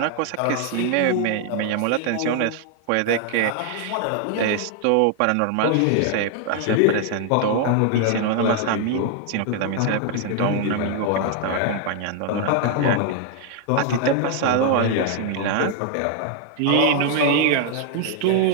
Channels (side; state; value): both; different; correlation 0.00